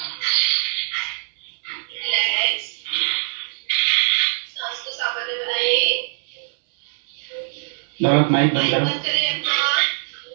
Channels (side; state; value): left; silent; digital silence